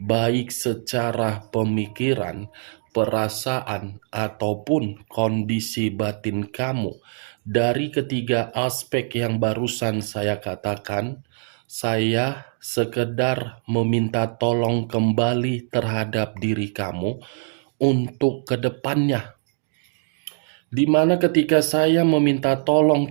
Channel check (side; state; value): left; silent; digital silence